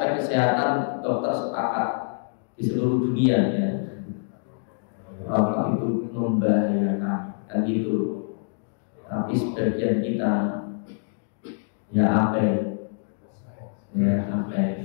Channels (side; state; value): right; silent; digital silence